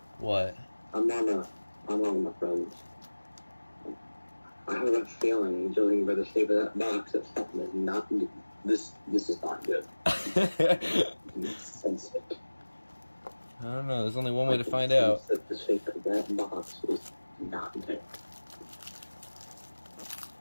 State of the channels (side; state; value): both; inverted; correlation -1.00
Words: What? I'm on my friends. I have a feeling, judging by the shape of that box, that something is not good. This is not good. I can sense it. I don't know, there's only one way to find out. That the shape of that box is not good.